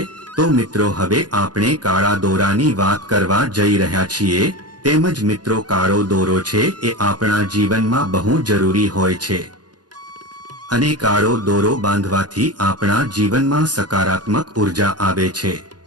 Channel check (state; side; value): late; left; 0.69 ms